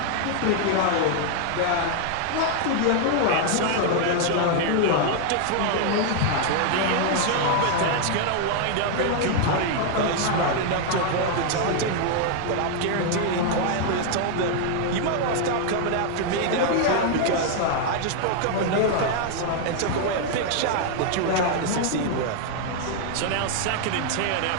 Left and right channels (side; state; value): both; different; correlation 0.00